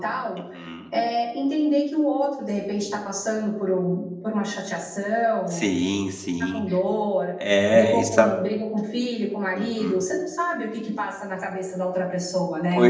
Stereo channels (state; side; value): identical; both; correlation 1.00